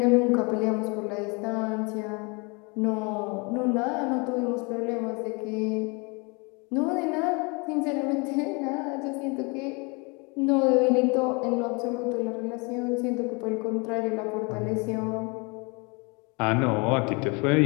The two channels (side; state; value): right; quieter; 30.2 dB